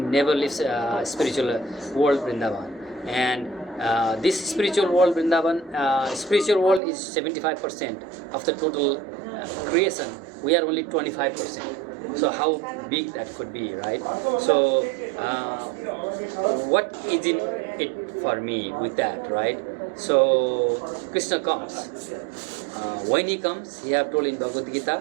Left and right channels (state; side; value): drops out; left; at 6.8 s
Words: leaves spiritual world Vrindavan. And this spiritual world Vrindavan, spiritual world is 75% of the total creation. We are only 25%. So how big that could be, right? So what is in it for me with that, right? So Krishna comes. When he comes, he have told in Bhagavad